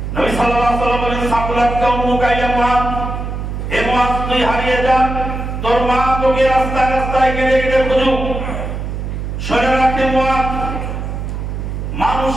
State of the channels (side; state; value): right; noise; hum, 5 dB below the sound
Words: নবী সাল্লাল্লাহু আলাইহি ওয়াসাল্লাম বলেন, সাকুলাত কাউমুকা ইয়া মুআয, হে মুআয তুই হারিয়ে যা, তোর মা তোকে রাস্তায় রাস্তায় কেটে কেটে খুঁজুক। শুনে রাখতে মুআয,